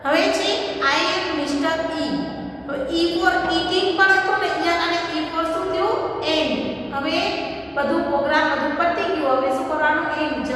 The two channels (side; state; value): both; identical; correlation 1.00